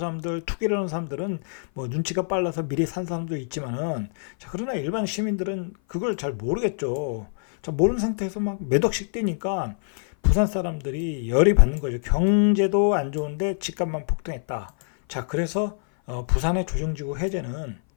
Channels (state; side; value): silent; right; 56 dB below the other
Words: 투기를 하는 사람들은 뭐 눈치가 빨라서 미리 산 사람도 있지만은, 자, 그러나 일반 시민들은 그걸 잘 모르겠죠. 자, 모르는 상태에서 막 몇 억씩 뛰니까 부산 사람들이 열이 받는 거죠. 경제도 안 좋은데 집값만 폭등했다. 자, 그래서 부산의 조정지구 해제는